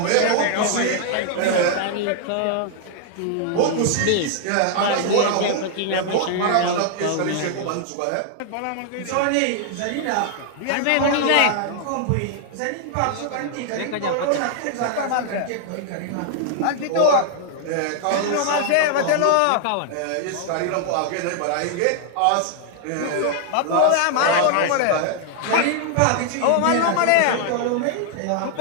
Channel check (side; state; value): both; different; correlation 0.00